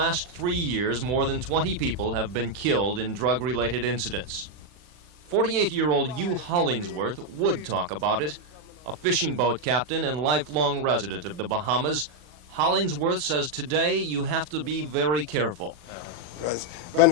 3 years more than 20 people have been killed in drug-related incidents. 48-year-old Hugh Hollingsworth would talk about it. A fishing boat captain and lifelong resident of the Bahamas, Hollingsworth says today you have to be very careful. Because when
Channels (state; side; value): late; left; 40 ms